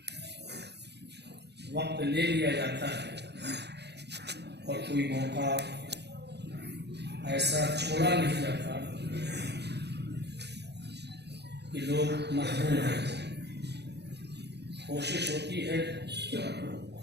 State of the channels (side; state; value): left; late; 0.49 ms